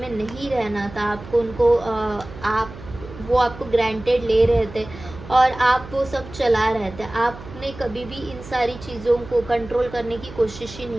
नहीं रहना था। आपको उनको आप वो आपको ग्रांटेड ले रहे थे और आप वो सब चला रहे थे। आपने कभी भी इन सारी चीज़ों को कंट्रोल करने की कोशिश ही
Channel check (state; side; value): noise; right; hum, 15 dB below the sound